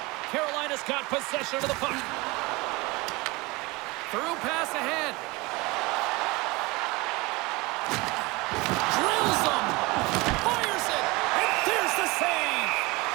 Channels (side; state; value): left; quieter; 23.7 dB